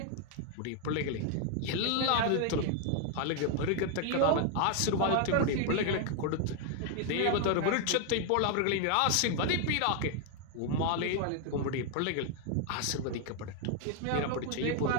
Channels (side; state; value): both; different; correlation 0.00